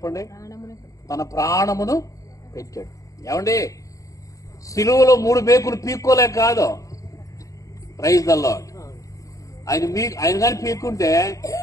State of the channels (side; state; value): right; late; 0.16 ms